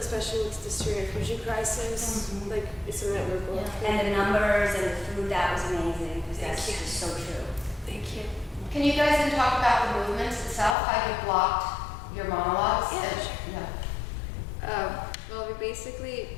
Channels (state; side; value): drops out; right; at 10.8 s